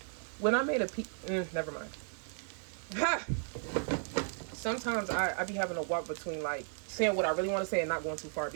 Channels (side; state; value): left; silent; 55 dB below the other